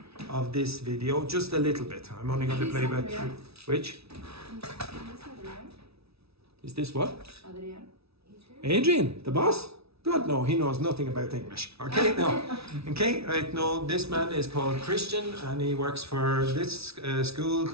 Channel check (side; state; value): left; late; 0.78 ms